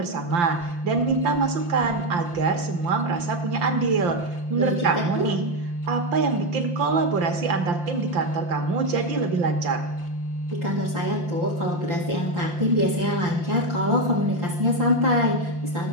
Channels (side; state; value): left; late; 5.8 ms